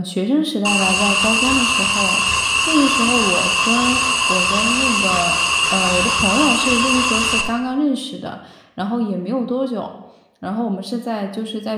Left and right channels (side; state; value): both; identical; correlation 1.00